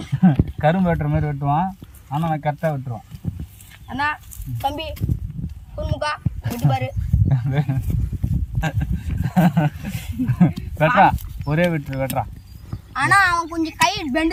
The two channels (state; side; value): identical; both; correlation 1.00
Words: கரும்பு வெட்டுற மாதிரி வெட்டுவான். ஆனால் நான் கரெக்டாக வெட்டுருவான். அண்ணா தம்பி குறுமுக்கா வெட்டி பாரு. வெட்டுறா ஒரே வெட்டுறா. ஆனா அவன் கொஞ்சம் கை